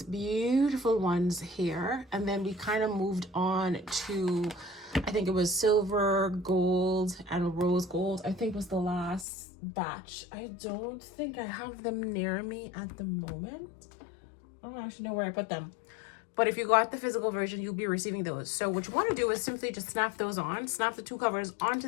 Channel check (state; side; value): drops out; right; at 9.2 s